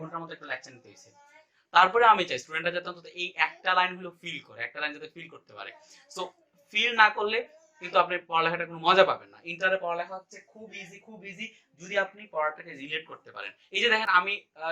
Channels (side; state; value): both; identical; correlation 1.00